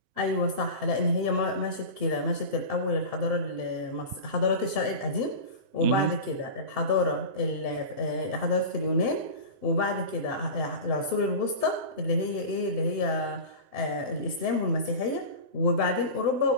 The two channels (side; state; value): left; late; 7.7 ms